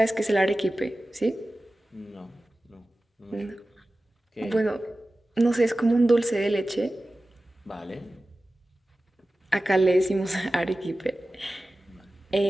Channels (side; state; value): both; normal; correlation 0.96